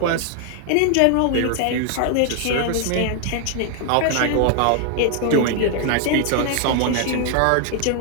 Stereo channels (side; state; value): both; different; correlation 0.00